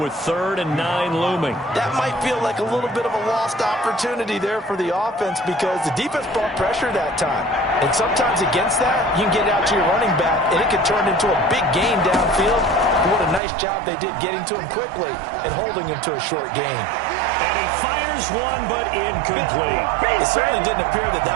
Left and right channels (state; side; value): drops out; left; at 13.4 s